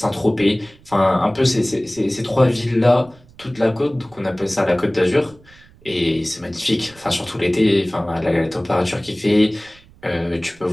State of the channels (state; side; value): noise; right; rumble, 26 dB below the sound